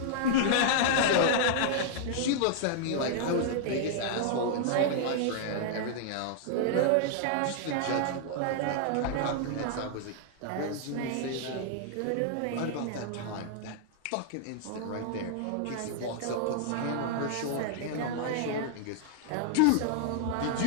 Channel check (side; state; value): both; different; correlation -0.01